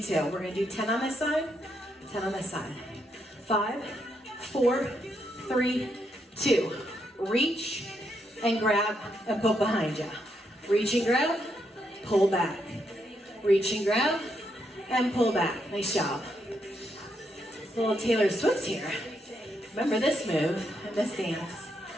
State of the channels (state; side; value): normal; both; correlation 0.79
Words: to. We're gonna do 10 on this side, 10 on this side. 5, 4, 3, 2. Reach and grab and put behind you. Reach and grab, pull back. Reach and grab and pull back. Nice job. A little Taylor Swift here. Remember this move and this dance.